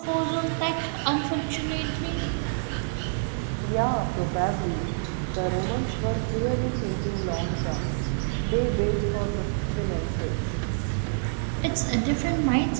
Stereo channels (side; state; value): left; silent; digital silence